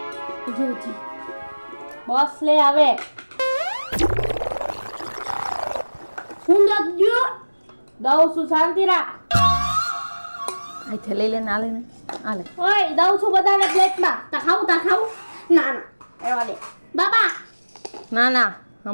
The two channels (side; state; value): both; inverted; correlation -1.00